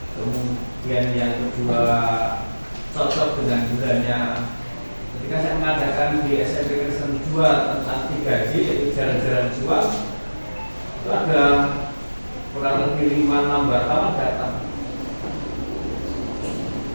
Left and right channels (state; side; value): inverted; both; correlation -1.00